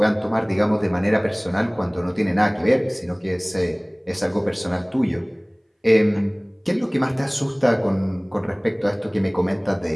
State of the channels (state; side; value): identical; both; correlation 1.00